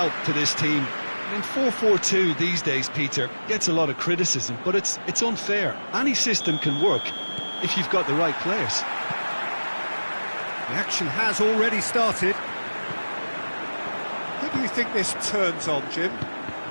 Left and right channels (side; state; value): both; inverted; correlation -1.00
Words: to this team. I mean, 4-4-2 these days, Peter, gets a lot of criticism, but it's unfair. Any system can work if you've got the right players. The action has already started. Who do you think this turns on, Jim?